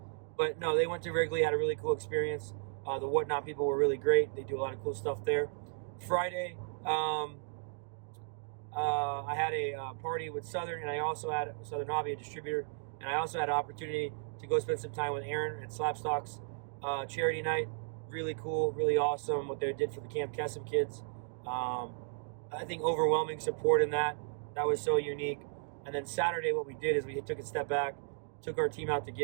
But no, they went to Wrigley, had a really cool experience. The Whatnot people were really great. They do a lot of cool stuff there. Friday, I had a party with Southern, and I also had Southern Hobby, a distributor, and I also had an opportunity to go spend some time with Aaron at SlabStox charity night. Really cool, really awesome what they did for the Camp Kesem kids. I think overwhelming support in that. That was so unique. And then Saturday, what we did is we took a step back, took our team out to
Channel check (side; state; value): left; silent; digital silence